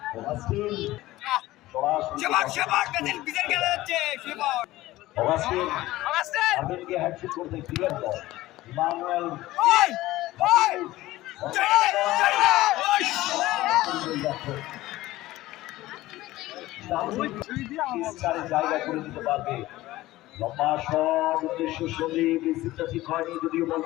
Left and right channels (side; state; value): right; quieter; 17.1 dB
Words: হ্যাট্রিক করতে ক্লিয়ার বল, ইমানুয়েল জায়গা করে দিতে পারবে, লম্বা শট উদ্দেশ্য সন্দীপ, রিসিভটা ঠিক হয়নি, যদিও বল